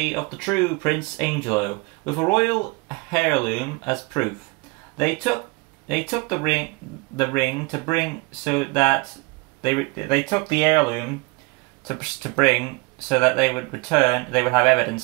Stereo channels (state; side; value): quieter; left; 26.7 dB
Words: of the true Prince Angelo, with a royal heirloom as proof. They took the ring to bring so that they took the heirloom to bring so that they would return. They would have